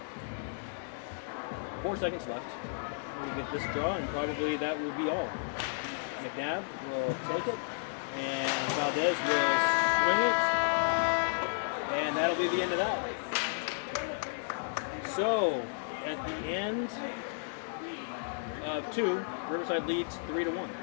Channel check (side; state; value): right; silent; digital silence